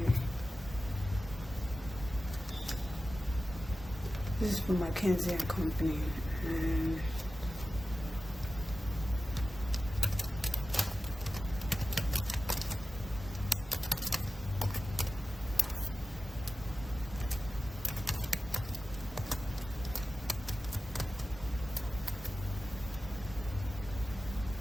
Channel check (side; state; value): both; normal; correlation 0.94